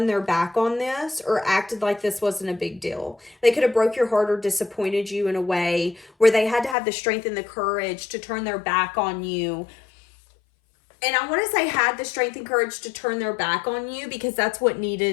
their back on this or acted like this wasn't a big deal. They could have broke your heart or disappointed you in a way where they had to have the strength and the courage to turn their back on you And I want to say had the strength and courage to turn their back on you because that's what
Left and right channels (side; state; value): right; drops out; at 6.8 s